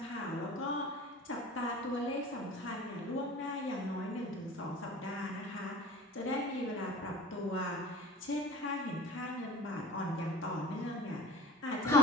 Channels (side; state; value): both; normal; correlation 0.39